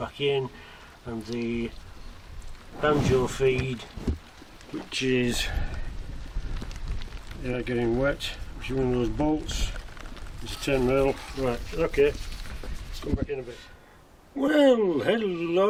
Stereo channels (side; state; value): both; identical; correlation 1.00